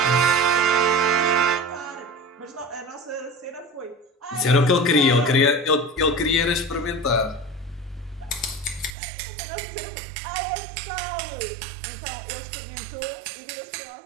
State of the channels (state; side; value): drops out; left; at 9.0 s